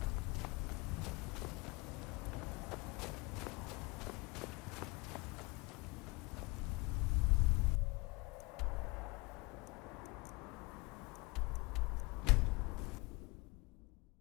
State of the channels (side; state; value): right; quieter; 25.4 dB